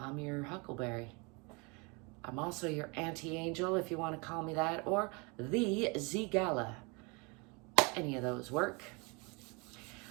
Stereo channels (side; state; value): left; quieter; 29.9 dB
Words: your huckleberry. I'm also your anti-angel, if you want to call me that, or the ZGALA. Any of those work.